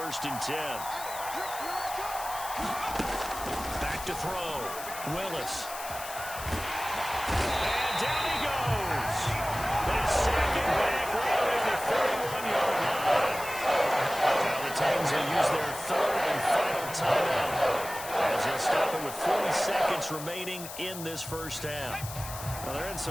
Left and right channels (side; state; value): left; noise; hiss, 11 dB below the sound